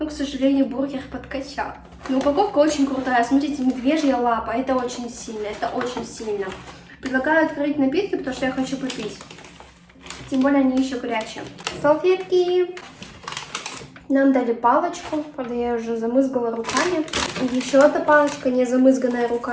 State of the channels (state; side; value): identical; both; correlation 1.00